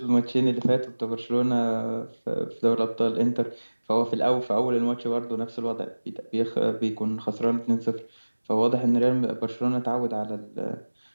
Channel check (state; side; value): inverted; both; correlation -1.00